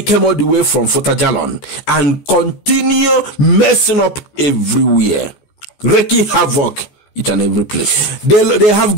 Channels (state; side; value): late; right; 14 ms